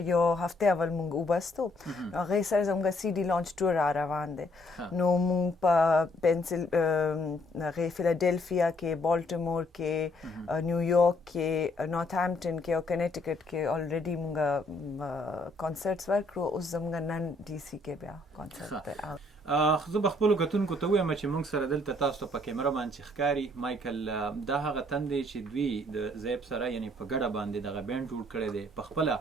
یو هفته اول موږ وبستو، هغې سره زموږ سی ډي لانچ ټور را روان دی. نو موږ په فیلاډلفیا کې، بالټیمور کې، نیویارک کې، نارت هامپټن کې او کنیټیکټ کې الریډي موږ کنسرټس ورکړو. اوس زموږ نن ډي سی کې بیا کنسرټ دی. زه به خپلو کتونکو ته ووایم چې موږ سره دلته تاسو ته په کیمره باندې چې ښکاري مایکل، دا هغه تن دی چې دوی د زیب سره یعنی په ګډه باندې دغه بینډ جوړ کړی دی. په خپله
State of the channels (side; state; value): both; normal; correlation 0.67